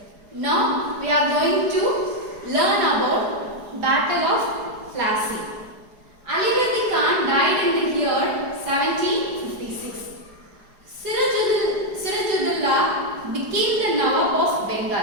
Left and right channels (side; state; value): left; late; 4.8 ms